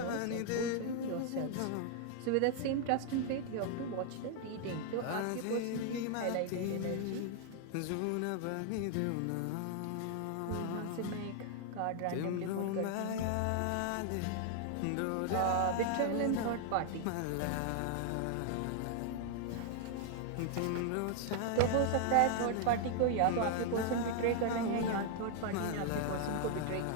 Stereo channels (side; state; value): both; different; correlation 0.00